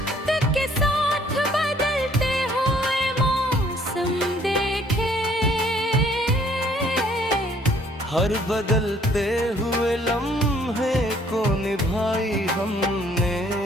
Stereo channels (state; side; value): normal; both; correlation 0.61